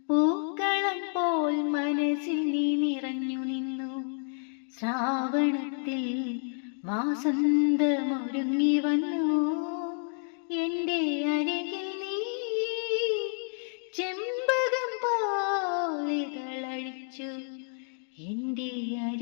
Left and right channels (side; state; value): right; silent; 58 dB below the other